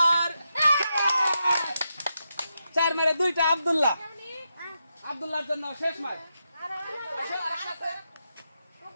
4 মারে 2টা, আব্দুল্লাহ। আব্দুল্লাহর জন্য শেষ মার,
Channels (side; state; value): both; inverted; correlation -0.85